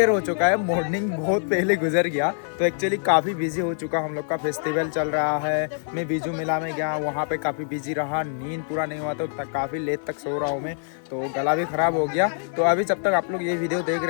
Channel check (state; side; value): silent; right; digital silence